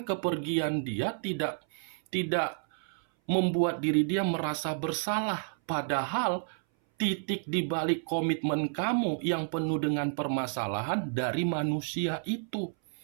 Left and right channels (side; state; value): left; silent; 57 dB below the other